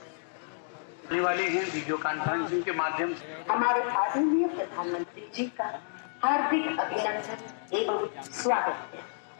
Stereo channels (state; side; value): silent; right; digital silence